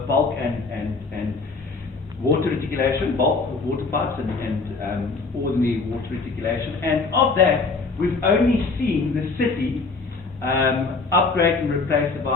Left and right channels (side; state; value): right; quieter; 4.1 dB